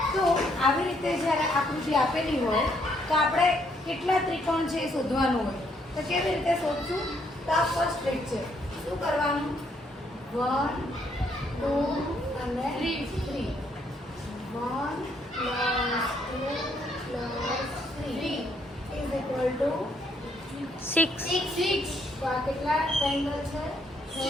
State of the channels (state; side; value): normal; both; correlation 0.71